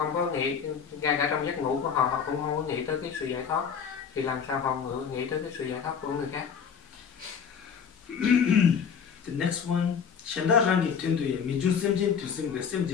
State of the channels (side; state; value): right; quieter; 6.8 dB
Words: có nghĩ, ngay cả trong giấc ngủ của họ, họ cũng không có nghĩ tới cái sự giải thoát. Thì làm sao họ nghĩ tới cái sự giải thoát của người khác? The next one, Shanda rangi tenduye mijun semjen tu semga